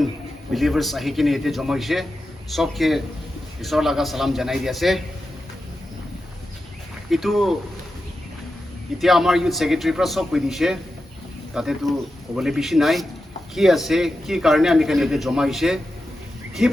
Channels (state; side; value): normal; both; correlation 0.90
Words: believers आही किने एते जमा होइसे सबके ईश्वर लगा सलाम जनाई दिया से इतु इतिया आमार यूथ सेक्रेटरी पर सब कइ दिसे ताते तो कबले बेसि नाइ कि आसे कि कारणे आमी खाने एते जमा होइसे कि